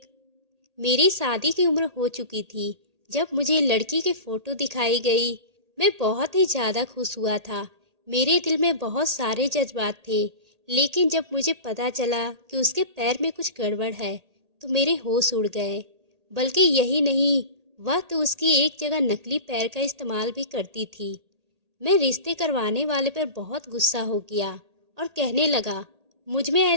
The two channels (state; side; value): late; left; 1.8 ms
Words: मेरी शादी की उम्र हो चुकी थी। जब मुझे लड़की की फ़ोटो दिखाई गई, मैं बहुत ही ज़्यादा खुश हुआ था। मेरे दिल में बहुत सारे जज़्बात थे, लेकिन जब मुझे पता चला कि उसके पैर में कुछ गड़बड़ है, तो मेरे होश उड़ गए। बल्कि यही नहीं, वह तो उसकी एक जगह नकली पैर का इस्तेमाल भी करती थी। मैं रिश्ते करवाने वाले पर बहुत गुस्सा हो गया और कहने लगा, मुझ में